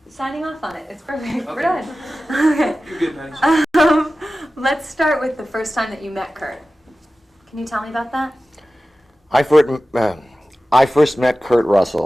Signing off on it. It's perfect. We're Okay. done. Okay. You're good, Patty. Let's start with the first time that you met Kurt. Can you tell me about that? I first met Kurt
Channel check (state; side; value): normal; both; correlation 0.95